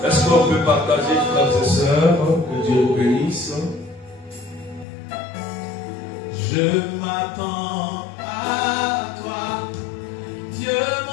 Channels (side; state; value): right; drops out; at 4.9 s